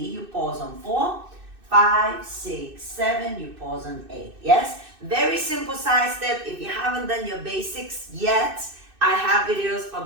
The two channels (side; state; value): left; late; 2.6 ms